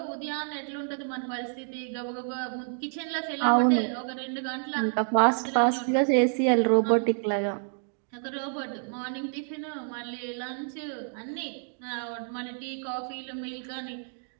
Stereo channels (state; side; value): silent; left; 59 dB below the other